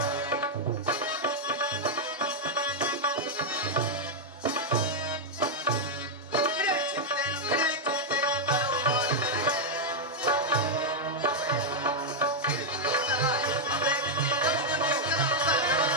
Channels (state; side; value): normal; both; correlation -0.02